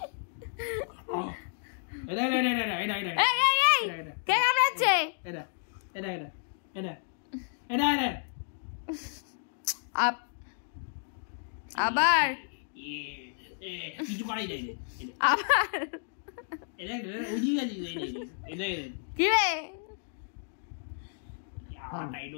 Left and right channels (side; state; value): right; silent; digital silence